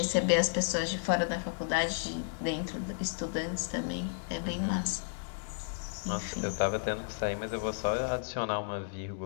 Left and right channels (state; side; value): silent; right; digital silence